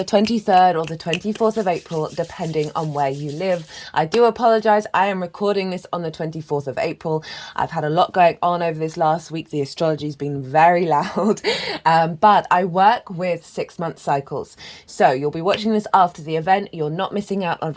23rd or the 24th of April, depending on where you live. I do apologize. I am recording this on the 24th of April. I've had a lot going on over this last week. The astrology's been very loud, but I work with 6-month cycles. So you'll be watching this after the event. You're not missing out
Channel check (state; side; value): identical; both; correlation 1.00